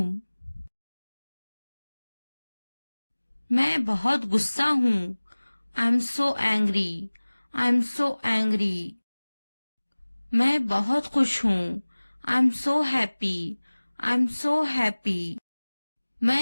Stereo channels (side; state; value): both; inverted; correlation -1.00